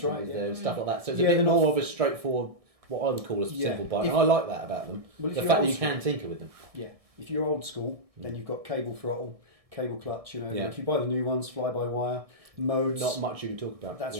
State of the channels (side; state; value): left; late; 1.6 ms